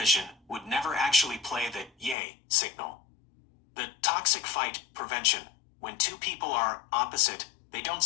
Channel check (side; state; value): right; drops out; at 2.1 s